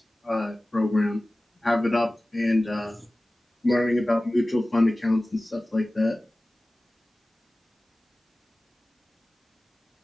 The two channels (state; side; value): normal; both; correlation 0.97